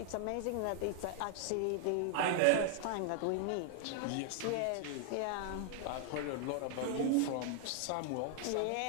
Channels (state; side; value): different; both; correlation 0.00